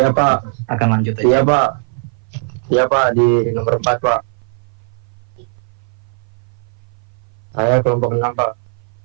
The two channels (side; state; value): left; silent; 61 dB below the other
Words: Pak. akan lanjut aja. Iya, Pak. Iya Pak, di nomor 4 Pak. Saya kelompok 6 Pak.